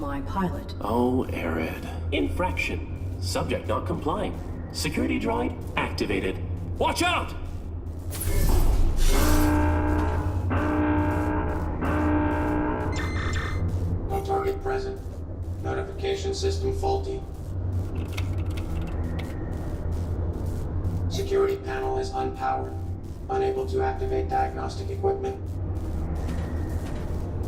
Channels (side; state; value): both; identical; correlation 1.00